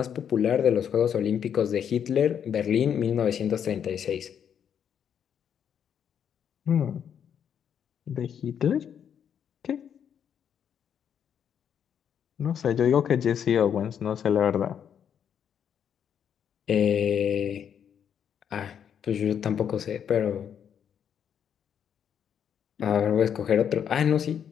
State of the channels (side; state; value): right; quieter; 8.4 dB